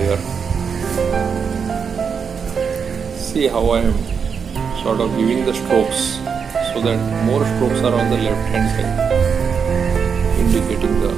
See how I am sort of giving the strokes so that more strokes are on the left hand side, indicating the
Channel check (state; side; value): quieter; left; 6.3 dB